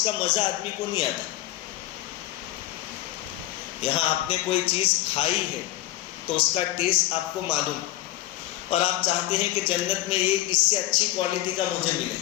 کا مزہ آدمی کو نہیں آتا۔ یہاں آپ نے کوئی چیز کھائی ہے تو اس کا ٹیسٹ آپ کو معلوم، اور آپ چاہتے ہیں کہ جنت میں یہ اس سے اچھی کوالٹی کا مجھے ملے۔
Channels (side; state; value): right; quieter; 16.0 dB